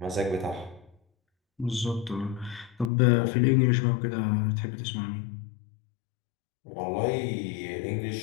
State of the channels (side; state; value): right; drops out; at 2.9 s